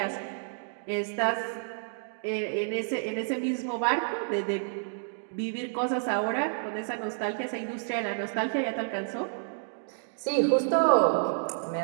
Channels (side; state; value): left; silent; digital silence